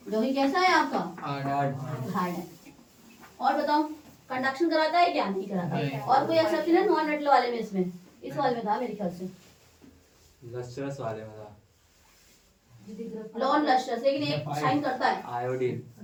जो ही कैसा है आपका? हार्ड है। और बताओ, कंडक्शन कराता है क्या? नहीं कराता है। और कोई एक्सेप्शन है नॉन मेटल वाले में? इसमें इस वाले में था मेरे ख्याल से, लस्ट्रस वाले में था। नॉन लस्ट्रस, लेकिन एक शाइन करता है। आयोडीन।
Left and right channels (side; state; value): both; identical; correlation 1.00